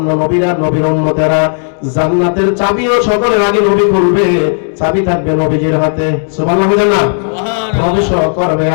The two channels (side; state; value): right; silent; digital silence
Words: নবীরা নবীর উম্মতেরা জান্নাতের চাবিও সকলের আগে নবী খুলবে চাবি থাকবে নবীজির হাতে সুবহানাল্লাহ বলেন না সুবহানাল্লাহ প্রবেশ করবে